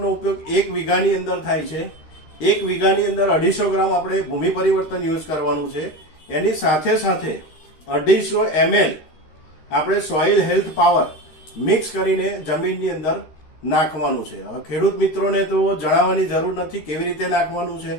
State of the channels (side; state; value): right; late; 13 ms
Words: ઉપયોગ 1 વીઘાની અંદર થાય છે. 1 વીઘાની અંદર 250 ગ્રામ આપણે ભૂમિ પરિવર્તન યુઝ કરવાનું છે. એની સાથે સાથે 250 ml આપણે સોઇલ હેલ્થ પાવર મિક્સ કરીને જમીનની અંદર નાખવાનું છે. હવે ખેડૂત મિત્રોને તો જણાવવાની જરૂર નથી કેવી રીતે નાખવાનું છે.